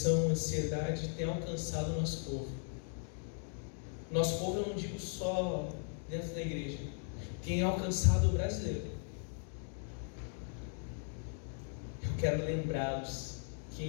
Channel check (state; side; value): silent; right; 53 dB below the other